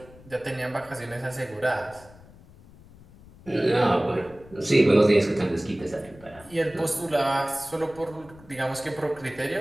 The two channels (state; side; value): noise; left; rumble, 22 dB below the sound